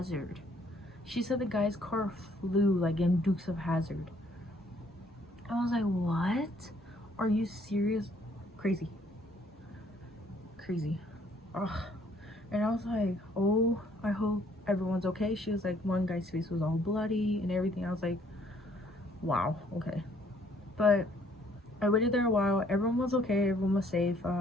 She said the guy's car flew like in Dukes of Hazzard. I was like, what? Are you serious? Crazy. Ugh. And I was like, oh, I hope everyone's okay. She was like, one guy's face was all bloody and everything. I was like, wow, okay. But I waited there a while. Everyone was okay. Everyone was safe.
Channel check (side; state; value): both; normal; correlation 0.63